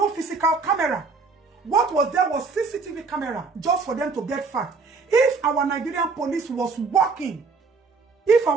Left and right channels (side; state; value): left; quieter; 4.4 dB